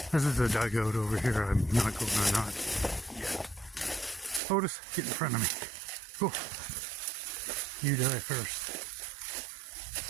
This is a dugout over here. I'm not going or not yet. Otis, get in front of me. Go. You die first.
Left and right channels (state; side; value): drops out; left; at 4.4 s